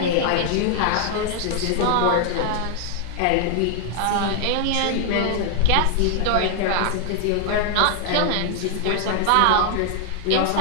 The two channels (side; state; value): both; different; correlation 0.00